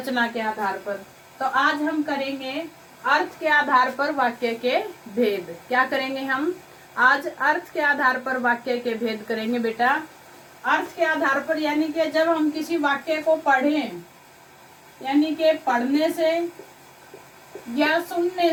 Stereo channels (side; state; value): both; identical; correlation 1.00